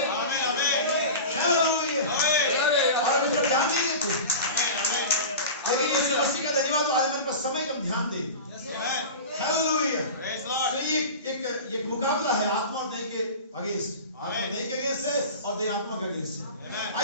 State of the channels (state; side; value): inverted; both; correlation -0.32